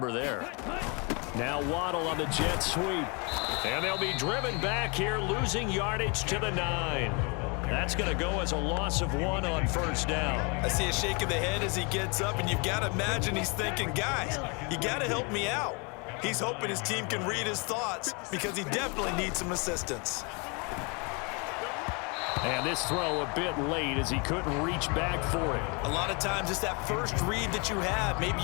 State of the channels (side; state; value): right; quieter; 31.9 dB